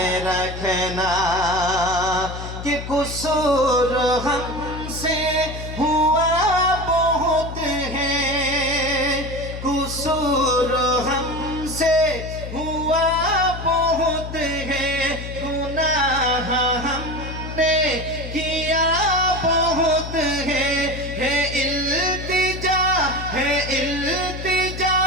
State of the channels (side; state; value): left; noise; hum, 9 dB below the sound